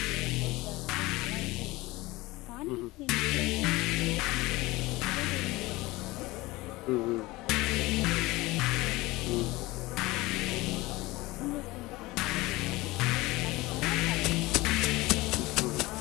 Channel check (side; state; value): right; quieter; 20.6 dB